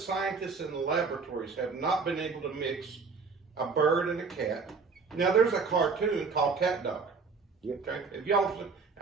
in the laboratories have not been able to mix a bird and a cat. Now, there's a cartoon called Cat Dog. Yep. Okay, if y'all,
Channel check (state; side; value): quieter; left; 5.0 dB